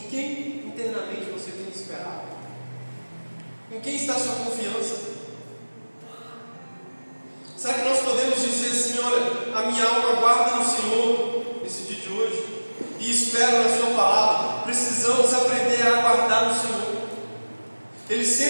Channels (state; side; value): inverted; both; correlation -1.00